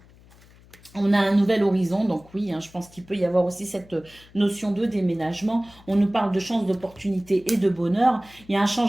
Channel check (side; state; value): left; noise; hum, 25 dB below the sound